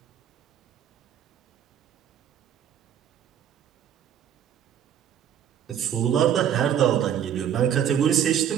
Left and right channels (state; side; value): quieter; left; 9.5 dB